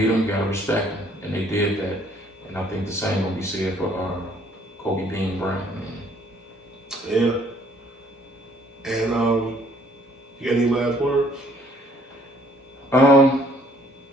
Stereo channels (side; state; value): both; normal; correlation 0.61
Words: him, you gotta respect him, and they did that. And I think the same will be said for Kobe Bean Bryant, man. Yeah. And you got any last words?